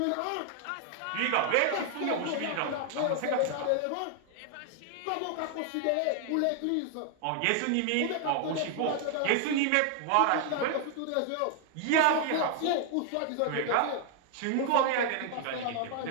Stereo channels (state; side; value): different; both; correlation 0.00